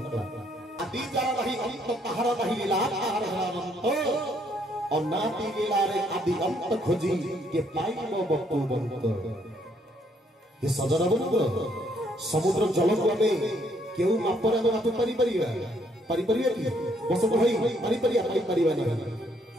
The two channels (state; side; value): normal; both; correlation 0.69